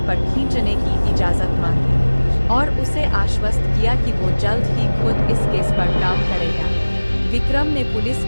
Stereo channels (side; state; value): both; inverted; correlation -1.00